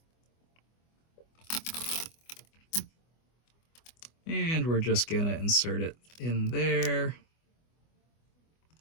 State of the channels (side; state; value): right; late; 24 ms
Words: And we're just gonna insert it in there,